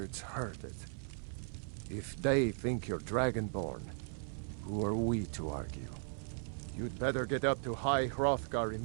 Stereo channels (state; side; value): silent; left; 53 dB below the other